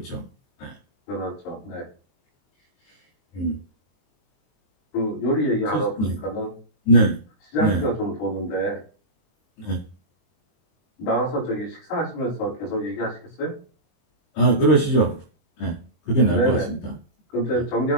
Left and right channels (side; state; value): right; late; 23 ms